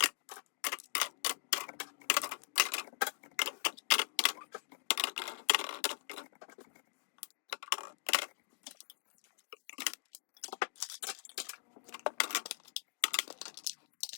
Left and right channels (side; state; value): right; silent; digital silence